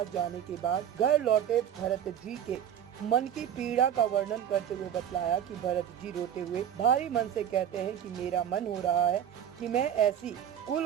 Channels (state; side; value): quieter; left; 9.6 dB